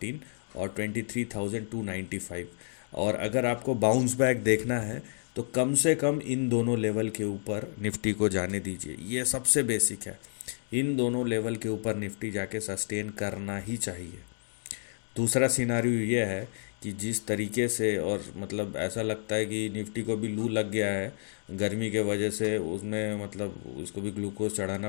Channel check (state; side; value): silent; right; digital silence